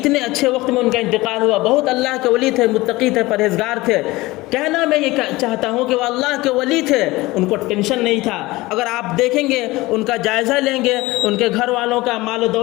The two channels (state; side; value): quieter; right; 20.2 dB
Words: اچھے وقت میں ان کا انتقال ہوا، بہت اللہ کے ولی تھے، متقی تھے، پرہیزگار تھے۔ کہنا میں یہ چاہتا ہوں کہ وہ اللہ کے ولی تھے، ان کو ٹینشن نہیں تھا۔ اگر آپ دیکھیں گے، ان کا جائزہ لیں گے، ان کے گھر والوں کا مال و